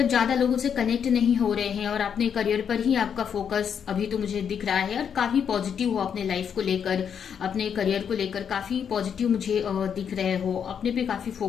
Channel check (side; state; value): right; quieter; 7.7 dB